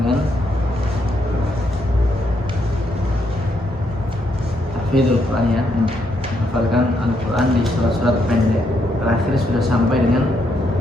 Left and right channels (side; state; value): both; normal; correlation 0.76